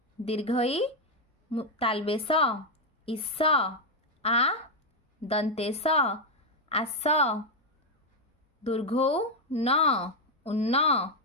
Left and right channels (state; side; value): normal; both; correlation 0.03